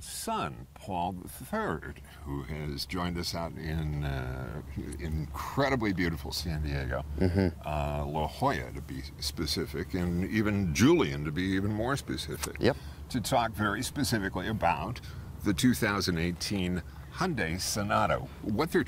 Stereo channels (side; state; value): both; identical; correlation 1.00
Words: son, Paul III, who has joined us out in incredibly beautiful San Diego, La Jolla to be specific, and even Julian to be even more specific, to talk very specifically about the 2018 Hyundai Sonata. What they're